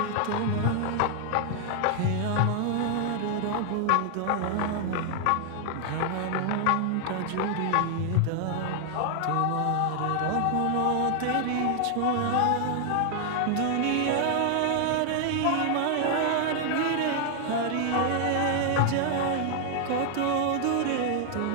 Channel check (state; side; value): different; both; correlation 0.00